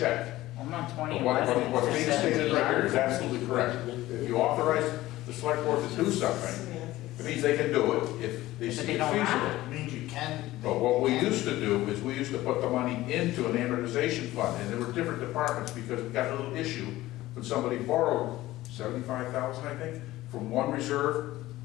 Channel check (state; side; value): quieter; right; 16.7 dB